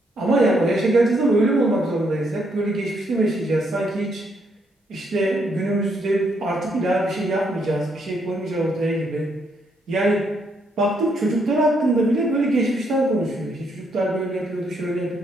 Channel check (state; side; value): normal; both; correlation 0.74